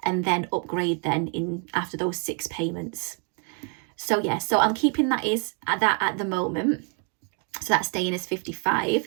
and then upgrade then in after those 6 payments. So yeah, so I'm keeping that at the moment. So that's staying as 55.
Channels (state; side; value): quieter; left; 39.3 dB